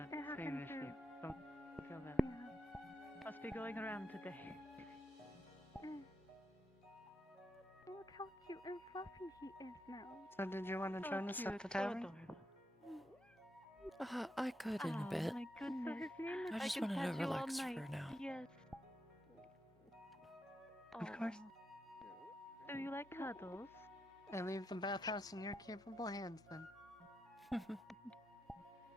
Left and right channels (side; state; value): both; normal; correlation 0.84